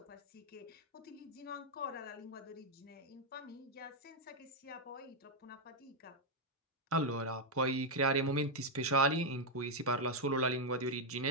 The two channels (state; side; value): normal; both; correlation -0.02